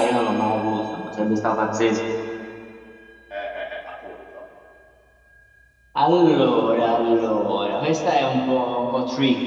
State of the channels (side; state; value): both; identical; correlation 1.00